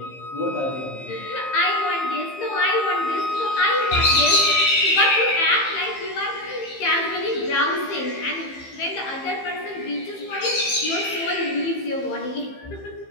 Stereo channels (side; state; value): right; late; 15 ms